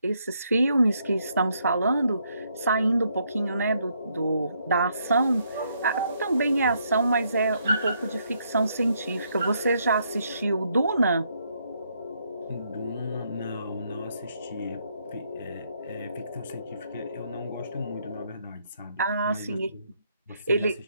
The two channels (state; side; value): inverted; both; correlation -0.74